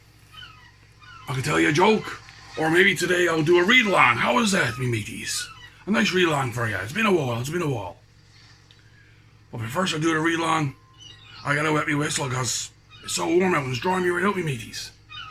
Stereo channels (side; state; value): both; identical; correlation 1.00